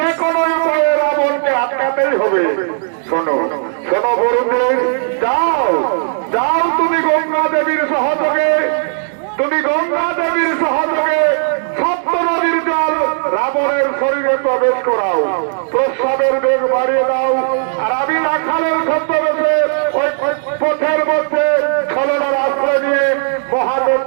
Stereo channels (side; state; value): left; silent; digital silence